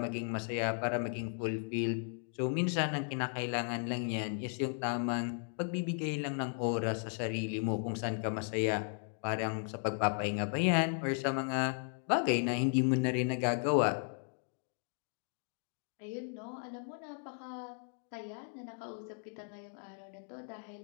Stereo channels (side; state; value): right; silent; 54 dB below the other